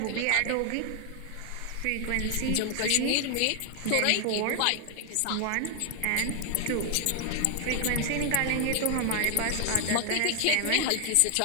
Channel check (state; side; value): different; both; correlation 0.00